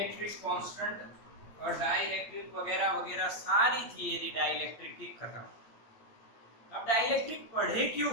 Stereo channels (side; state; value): right; late; 8.9 ms